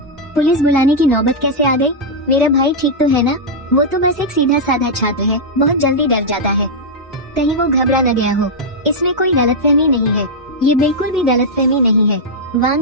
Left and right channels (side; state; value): both; normal; correlation -0.05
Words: पुलिस बुलाने की नौबत कैसे आ गई? मेरा भाई ठीक तो है ना? वो तो बस एक सीधा साधा छात्र है, बहुत जल्दी डर जाता है। कहीं वो घबरा न गया हो। इसमें कोई गलतफहमी नहीं है, ये बिल्कुल भी गलतफहमी नहीं है।